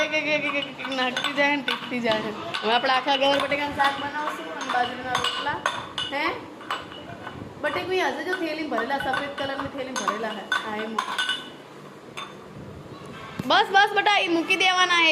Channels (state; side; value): identical; both; correlation 1.00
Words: એક નાખતી જાય ને ટીકતી જાય. હવે આપણે આખા ગવાર બટેકાનું શાક બનાવશું અને બાજરીના રોટલા. હે બટેકું હશે જો થેલી ભરેલા, સફેદ કલરની થેલી ભરેલા હે. હા એ બસ બસ બટા એ મૂકી દેવાના. એ